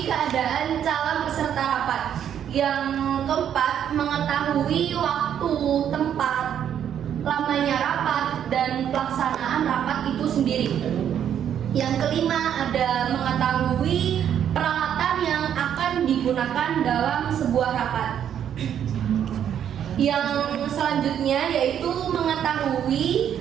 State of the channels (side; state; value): left; quieter; 9.4 dB